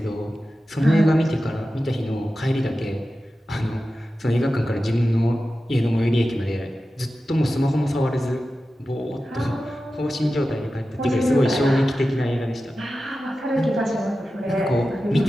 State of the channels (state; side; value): normal; both; correlation 0.93